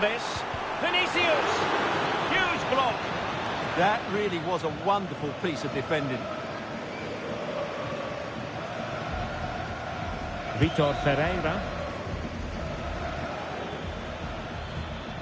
Vinicius! Huge block. That really was a wonderful piece of defending. Vitor Ferreira.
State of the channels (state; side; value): identical; both; correlation 1.00